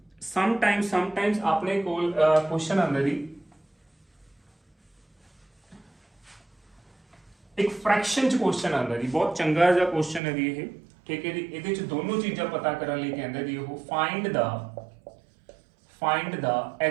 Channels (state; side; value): drops out; left; at 10.2 s